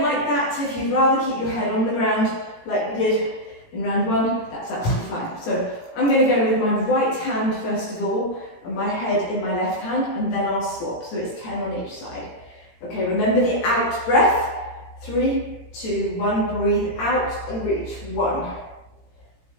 like that, if you'd rather keep your head on the ground like we did in round 1, that's absolutely fine. So I'm going to go with my right hand first of all, and my head in my left hand, and then I'll swap. So it's 10 on each side. Okay, remember the out breath. 3, 2, 1, breathe out and reach. 1,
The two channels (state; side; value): late; right; 18 ms